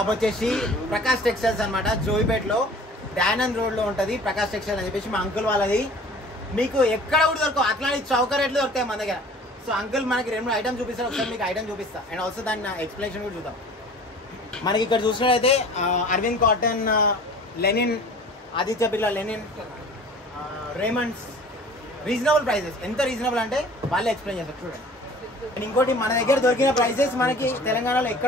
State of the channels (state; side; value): normal; both; correlation 0.46